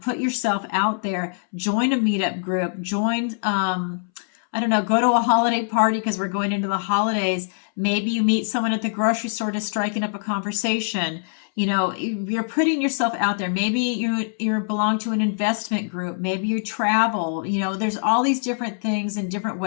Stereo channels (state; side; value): silent; right; 63 dB below the other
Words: yourself out there. Join a meetup group. Join, I don't know, go to a holiday party because we're going into the holidays. Maybe you meet someone at the grocery store to striking up a conversation. You know, you're putting yourself out there. Maybe you belong to an investment group. Maybe you travel. You know, there's all these different things and different